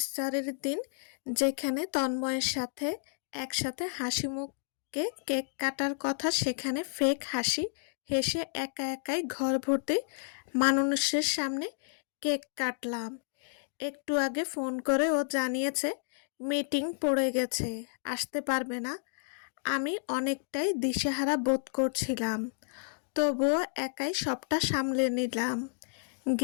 দিন যেখানে তন্ময়ের সাথে একসাথে হাসিমুখে কেক কাটার কথা, সেখানে ফেক হাসি হেসে একা একাই ঘর ভর্তি মানুষের সামনে কেক কাটলাম। একটু আগে ফোন করে ও জানিয়েছে মিটিং পড়ে গেছে, আসতে পারবে না। আমি অনেকটাই দিশেহারা বোধ করছিলাম, তবুও একাই সবটা সামলে নিলাম।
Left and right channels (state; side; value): silent; right; digital silence